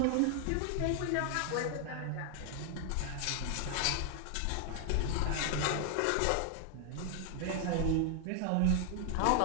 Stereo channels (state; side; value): different; both; correlation 0.00